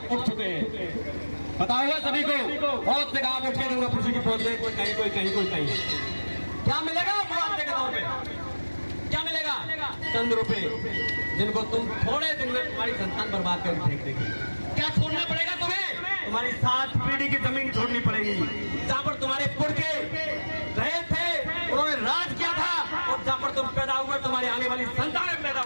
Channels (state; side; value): inverted; both; correlation -1.00